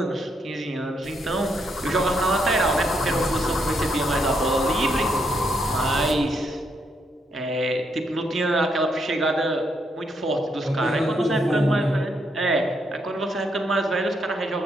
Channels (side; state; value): both; normal; correlation 0.77